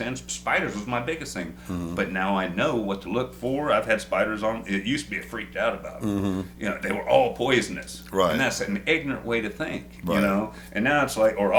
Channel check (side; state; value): both; identical; correlation 1.00